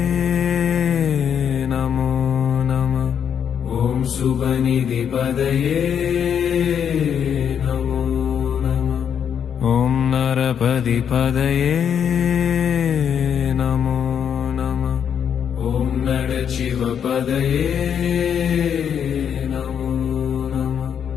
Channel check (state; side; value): quieter; right; 8.1 dB